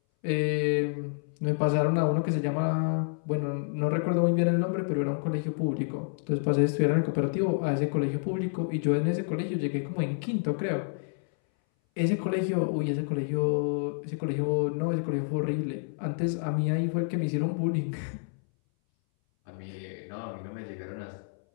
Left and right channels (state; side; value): silent; right; 59 dB below the other